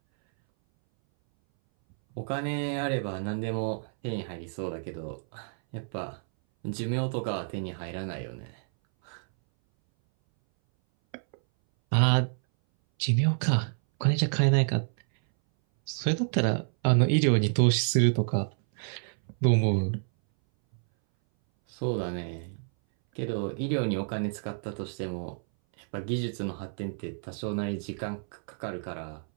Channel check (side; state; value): left; silent; 59 dB below the other